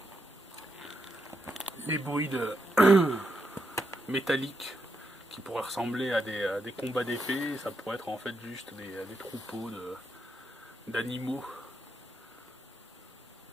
les bruits métalliques qui pourraient ressembler à des combats d'épée. Ça pourrait être en fait juste des troupeaux d'animaux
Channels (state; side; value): normal; both; correlation 0.82